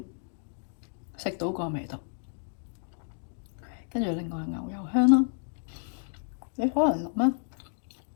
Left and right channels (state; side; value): silent; right; 57 dB below the other